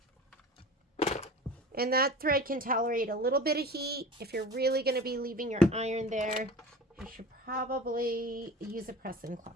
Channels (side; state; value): both; normal; correlation 0.37